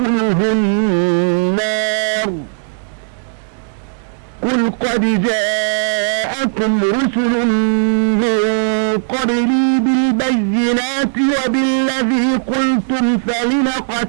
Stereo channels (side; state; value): left; silent; digital silence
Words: النار قل قد جاءكم رسل من قبلي بالبينات وبالذي قلتم فلم